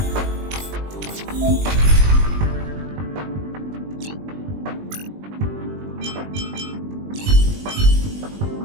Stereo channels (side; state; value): left; late; 20 ms